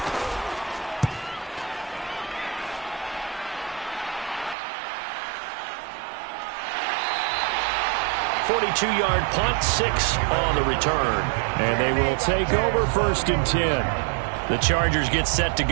42-yard punt, 6 on the return. And they will take over 1st and 10. The Chargers get set to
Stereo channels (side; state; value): left; drops out; at 4.5 s